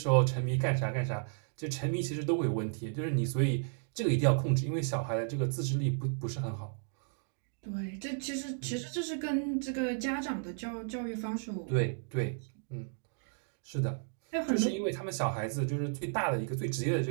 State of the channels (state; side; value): silent; left; digital silence